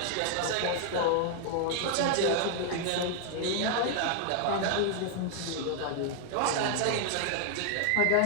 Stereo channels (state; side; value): different; both; correlation 0.00